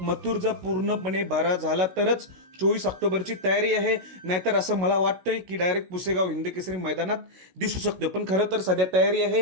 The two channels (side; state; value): left; late; 16 ms